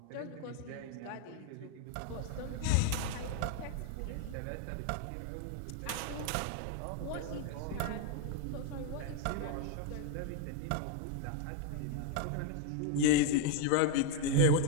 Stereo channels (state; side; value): different; both; correlation 0.00